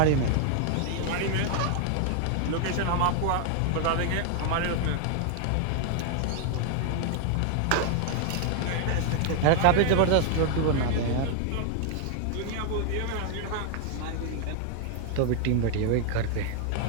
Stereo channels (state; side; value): different; both; correlation 0.00